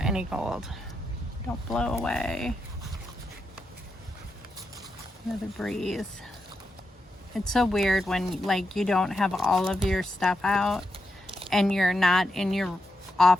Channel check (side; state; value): both; normal; correlation 0.85